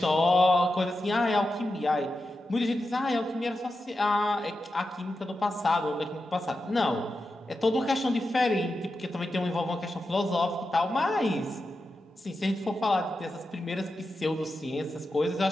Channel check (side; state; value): both; normal; correlation 0.90